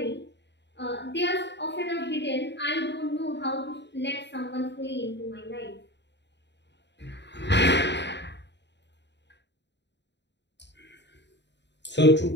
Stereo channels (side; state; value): right; late; 0.51 ms